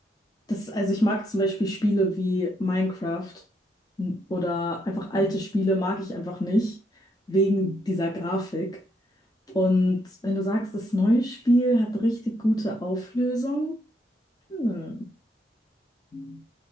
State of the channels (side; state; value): both; normal; correlation 0.75